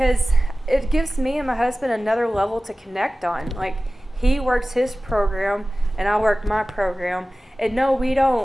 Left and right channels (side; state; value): both; normal; correlation 0.96